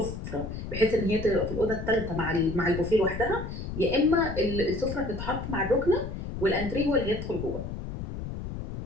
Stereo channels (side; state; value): left; noise; rumble, 7 dB below the sound